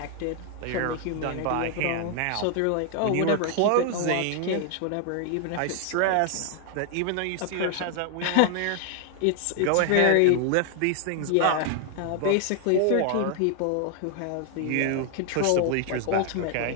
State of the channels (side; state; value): both; different; correlation 0.00